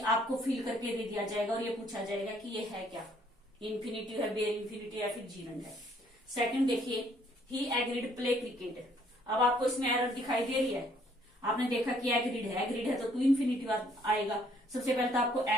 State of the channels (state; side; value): normal; both; correlation 0.64